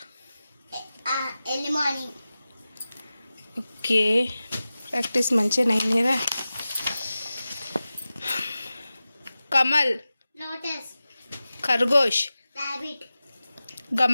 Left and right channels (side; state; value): both; inverted; correlation -0.95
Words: early morning, ఓకే, ప్రాక్టీస్ మంచిగా అయింది కదా. कमल, lotus, खरगोश, rabbit,